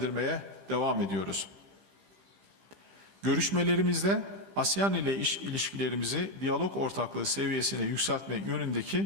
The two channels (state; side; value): late; left; 15 ms